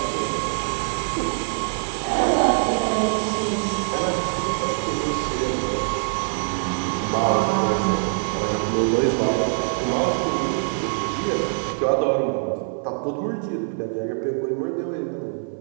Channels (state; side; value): silent; left; 63 dB below the other